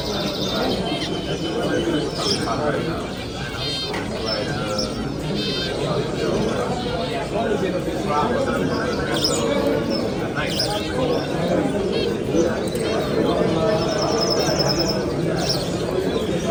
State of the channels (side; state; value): both; identical; correlation 1.00